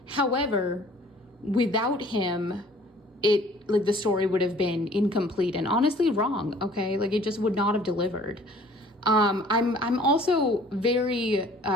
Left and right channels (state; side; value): normal; both; correlation 0.53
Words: However, without him, the story would have been incomplete and honestly wrong, okay? Like, it just would not have delivered. I'm also very